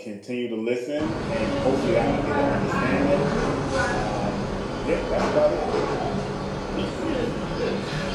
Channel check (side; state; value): both; identical; correlation 1.00